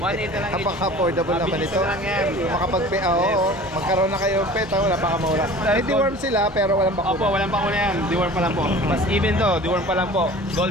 na lang. Napaka-affordable naman Mabilis ito. na lang yan. Makapag-pay, oo. Magkaroon na kayo ng pet, wala pa kamura. May deworm sila, pero walang bakuna. Opo, walang bakuna yan. Deworm pa lang po. Mas even to, deworm pa lang po.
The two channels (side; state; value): both; normal; correlation 0.42